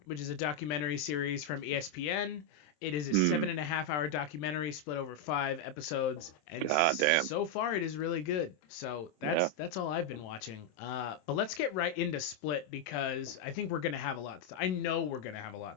documentary series from ESPN. It is a 7.5-hour documentary split over 5 episodes, and so far it is really good. So that's all I've been watching. But let's get right into Split because I think we're gonna have a lot. I know we're gonna have a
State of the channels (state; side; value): late; right; 27 ms